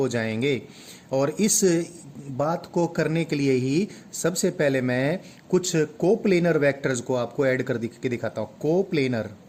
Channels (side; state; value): both; identical; correlation 1.00